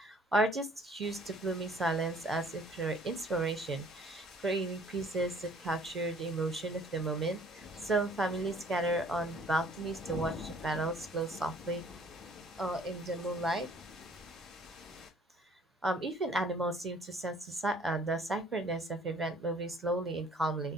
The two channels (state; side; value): normal; both; correlation 0.56